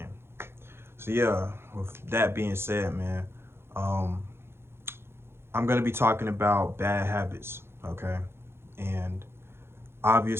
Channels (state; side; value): late; left; 0.12 ms